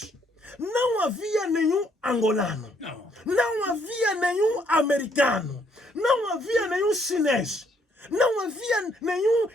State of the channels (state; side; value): normal; both; correlation 0.69